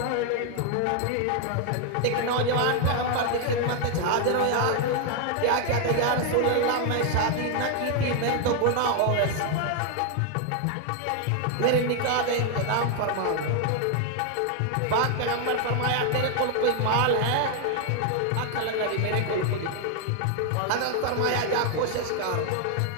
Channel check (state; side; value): different; both; correlation 0.00